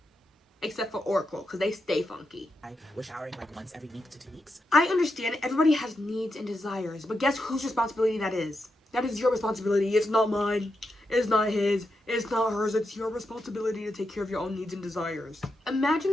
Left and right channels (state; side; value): normal; both; correlation 0.86